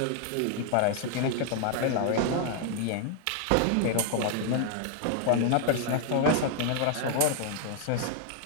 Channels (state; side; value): different; both; correlation 0.00